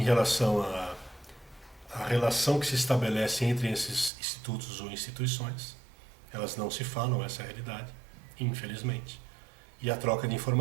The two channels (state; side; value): drops out; left; at 4.1 s